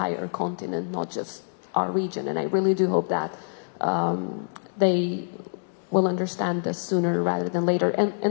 continent, not just our region. And I really do hope that they will understand this sooner rather than later.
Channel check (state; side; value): silent; right; digital silence